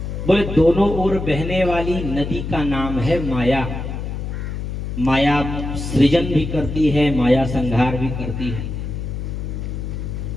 बोले, दोनों ओर बहने वाली नदी का नाम है माया। माया सृजन भी करती है, माया संहार भी करती है।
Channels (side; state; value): left; noise; hum, 5 dB below the sound